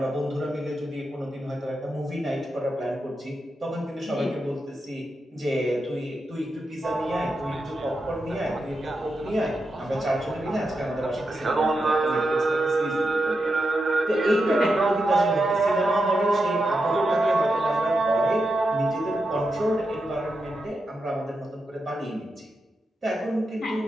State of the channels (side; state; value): both; normal; correlation 0.87